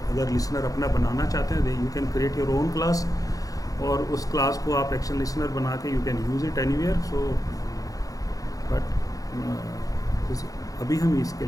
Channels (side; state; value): right; late; 0.17 ms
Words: अगर लिसनर अपना बनाना चाहते हैं, you can create your own class और उस क्लास को आप एक्शन लिसनर बना के you can use it anywhere. So but अभी हम इसके